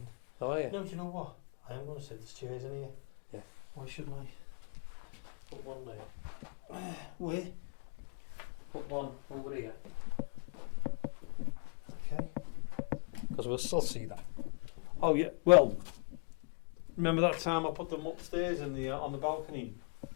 How are you? No, do you know what? I am going to sit. There's chairs in here. Yeah. Why shouldn't I? Put one there. Where? Put one over here. Okay. Because we'll still see that. Oh yeah. Well, remember that time I put them upstairs in the on the balcony?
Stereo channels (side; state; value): right; quieter; 38.8 dB